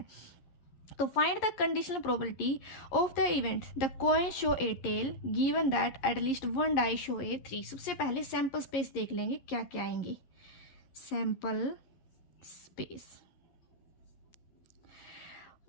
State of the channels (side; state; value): right; late; 11 ms